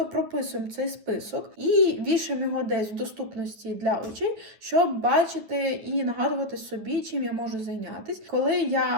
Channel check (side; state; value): left; late; 9.6 ms